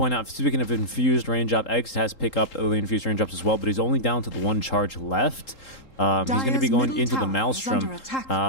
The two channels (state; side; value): late; right; 3.8 ms